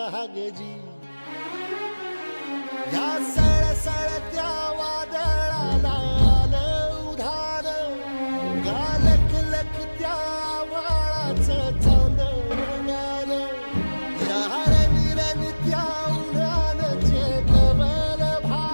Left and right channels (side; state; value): both; inverted; correlation -1.00